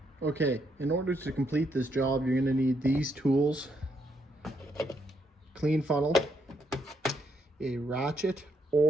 Okay, in order to complete this job, you're going to need these tools: clean funnel, a ratchet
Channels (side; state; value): both; normal; correlation 0.76